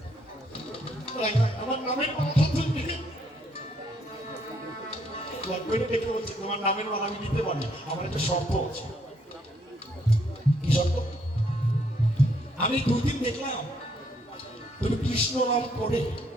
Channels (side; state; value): both; normal; correlation 0.71